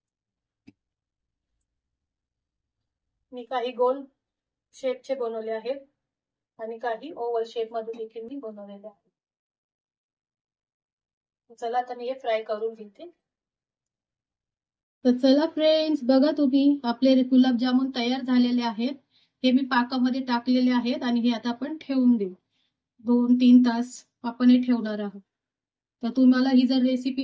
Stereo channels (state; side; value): identical; both; correlation 1.00